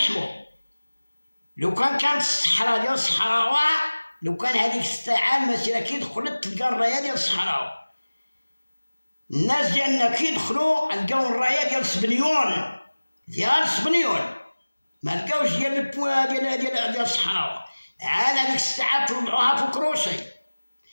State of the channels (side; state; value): both; inverted; correlation -1.00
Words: لو كانت الصحراء ديال الصحراوه، لو كان هذيك الساعه المسيره كي دخلت تلقى الرايه ديال الصحراوه، الناس ديالنا كي دخلوا لقاو الرايه ديال سبنيون، ديال سبنيون، ما لقاوش ديال البوا ديال الصحراوه. عاد هذيك الساعه طلعوها في كروشي،